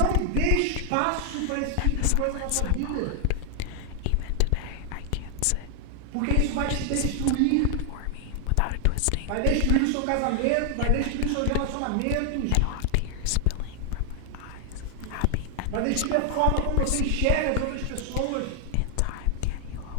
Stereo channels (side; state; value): both; different; correlation 0.00